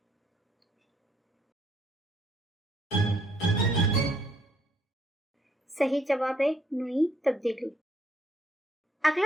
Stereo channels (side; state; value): both; normal; correlation 0.69